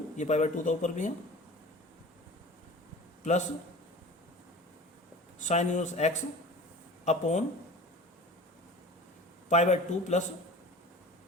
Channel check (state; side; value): normal; both; correlation 0.39